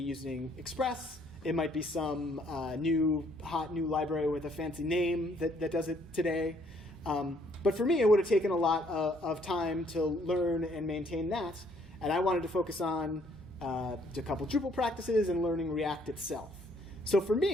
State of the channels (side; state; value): both; normal; correlation 0.65